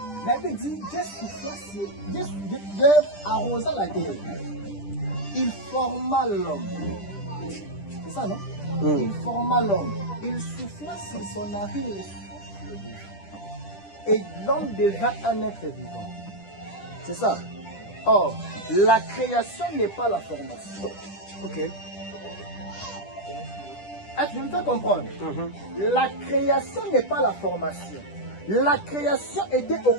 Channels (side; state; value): right; late; 10 ms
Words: La Bible dit, Dieu arrosa la terre. Il forma l'homme. C'est ça, non? Il forma l'homme. Il souffla sur son narine le souffle de vie. Et l'homme devint un être vivant. C'est ça. Or, la création n'est pas la formation. Ok. Est-ce que je me fais comprendre? La création n'est pas la formation. La création était au